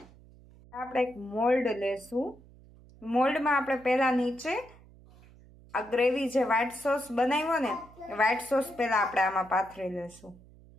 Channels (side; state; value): right; noise; hum, 24 dB below the sound